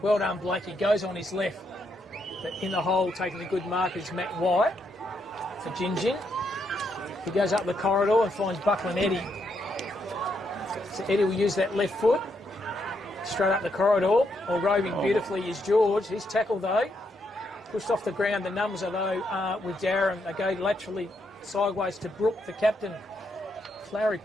Well done, Blake. He goes on his left. But in the hole, taking a good mark is Matt White for Gingin. He goes up the corridor and finds Buckland Eddie. So Eddie will use that left foot. Straight up the corridor, or roving beautifully is George. His tackle, though, Pushed off the ground. The numbers are though with Dowerin. They go laterally sideways to Brook, the captain. Flowery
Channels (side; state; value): both; normal; correlation 0.78